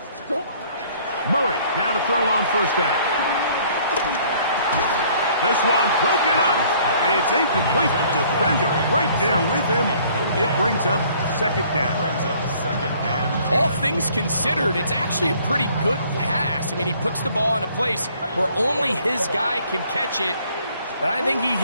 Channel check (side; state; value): both; inverted; correlation -0.58